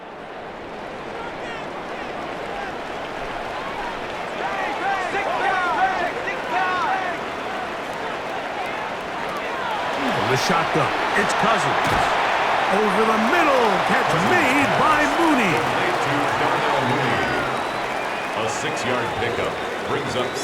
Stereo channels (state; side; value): identical; both; correlation 1.00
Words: The shotgun. It's Cousins. Over the middle. Catch made by Mooney. A 6-yard pickup brings up